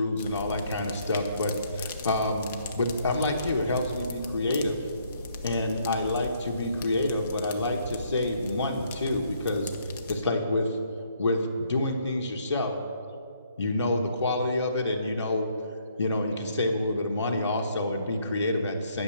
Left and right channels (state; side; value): inverted; both; correlation -0.68